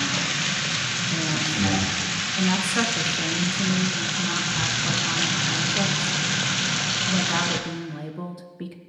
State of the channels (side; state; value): both; identical; correlation 1.00